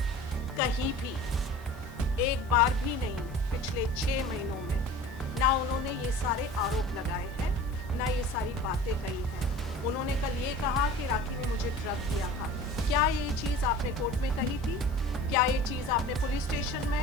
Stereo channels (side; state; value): both; normal; correlation 0.41